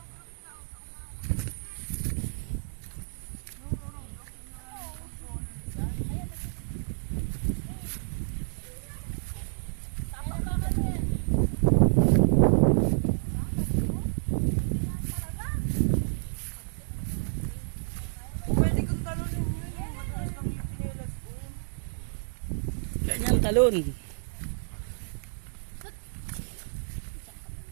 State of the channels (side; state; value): left; silent; digital silence